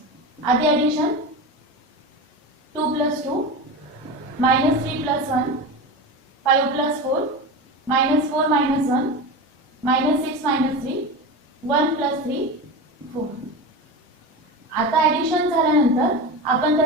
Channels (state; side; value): normal; both; correlation 0.25